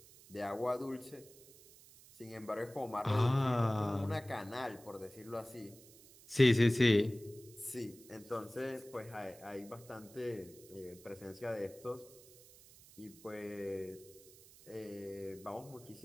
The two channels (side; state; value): right; noise; hiss, 22 dB below the sound